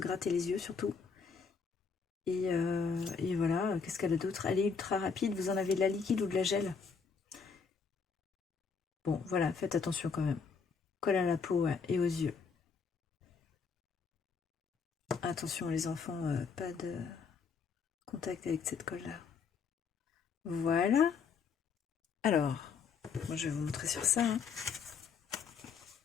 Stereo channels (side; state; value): right; quieter; 5.6 dB